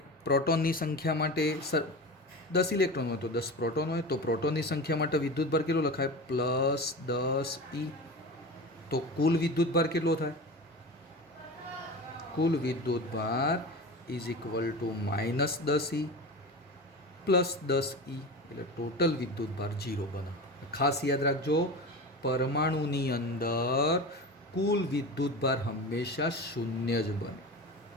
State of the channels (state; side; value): normal; both; correlation 0.29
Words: પ્રોટોનની સંખ્યા માટે 10 ઇલેક્ટ્રોન હોય તો 10 પ્રોટોન હોય, તો પ્રોટોનની સંખ્યા માટે વિદ્યુતભાર કેટલો લખાય? +10 E. તો કુલ વિદ્યુતભાર કેટલો થાય? કુલ વિદ્યુતભાર is equal to -10 E +10 E, એટલે ટોટલ વિદ્યુતભાર 0 બને. ખાસ યાદ રાખજો, પરમાણુની અંદર કુલ વિદ્યુતભાર હંમેશા 0 જ બને.